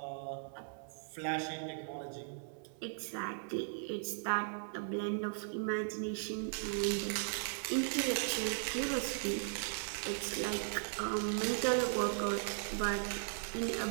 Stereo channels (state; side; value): silent; left; 53 dB below the other